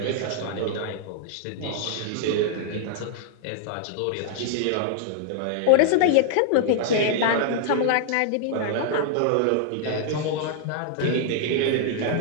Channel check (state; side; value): different; both; correlation -0.01